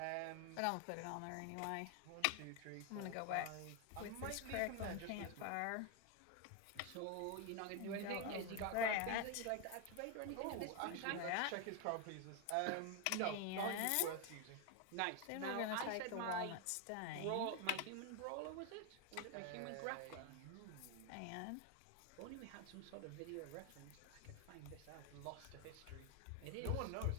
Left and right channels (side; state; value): both; different; correlation 0.01